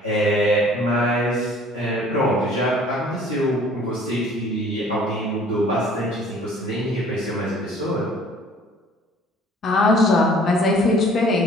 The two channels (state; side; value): normal; both; correlation 0.53